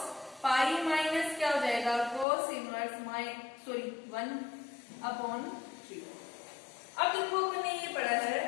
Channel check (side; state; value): right; drops out; at 2.2 s